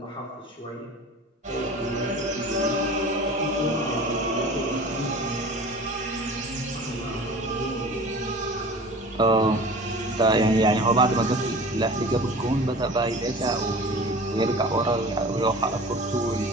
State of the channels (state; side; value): normal; both; correlation 0.40